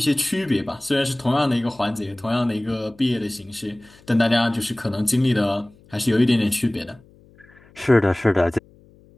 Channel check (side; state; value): left; noise; hum, 27 dB below the sound